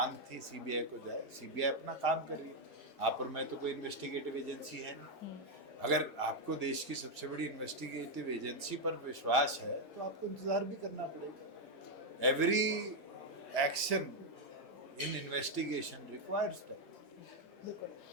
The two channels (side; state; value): both; normal; correlation 0.01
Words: थी सीबीआई को जाए, सीबीआई अपना काम कर रही है। आप और मैं तो कोई इन्वेस्टिगेटिव एजेंसी है नहीं। अगर आपको देश की सबसे बड़ी इन्वेस्टिगेटिव एजेंसी पर विश्वास है तो आपको इंतजार भी करना पड़ेगा। Every action in investigation requires time.